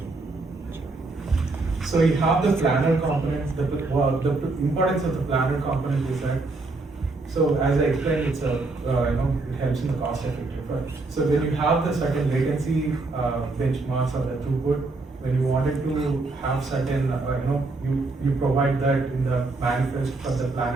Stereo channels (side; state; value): left; quieter; 3.4 dB